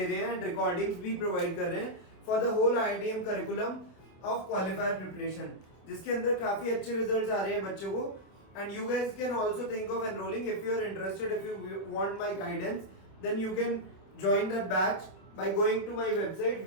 रहे हैं एंड रिकॉर्डिंग्स भी प्रोवाइड कर रहे हैं for the whole IITM curriculum of qualifier preparation, जिसके अंदर काफी अच्छे रिजल्ट्स आ रहे हैं बच्चों को. And you guys can also think of enrolling if you are interested. If you want my guidance then you can join that batch by going to my website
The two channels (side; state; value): right; late; 27 ms